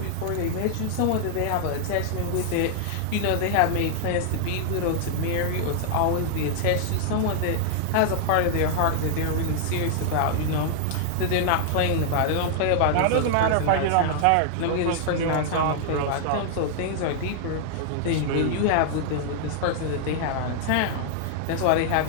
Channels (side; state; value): both; different; correlation -0.01